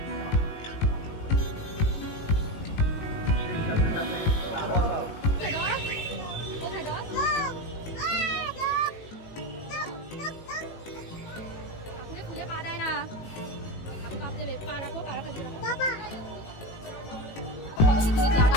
ঠাকুরে খুলে পা দেয় না, পা রাখো, পা রাখো।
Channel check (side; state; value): right; late; 19 ms